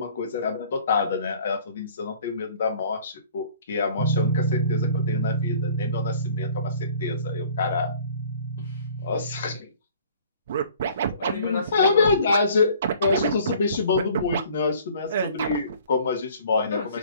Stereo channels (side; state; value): both; inverted; correlation -0.52